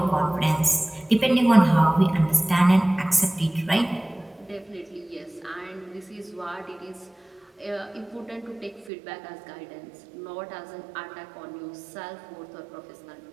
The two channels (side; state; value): left; drops out; at 8.9 s